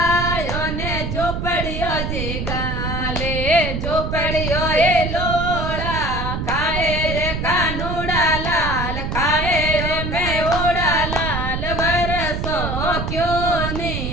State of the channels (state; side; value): noise; right; rumble, 3 dB below the sound